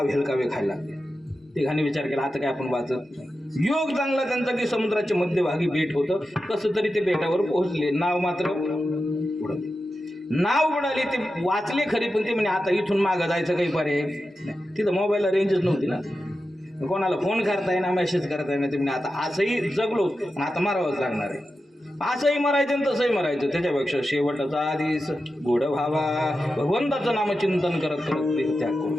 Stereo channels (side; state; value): both; normal; correlation 0.91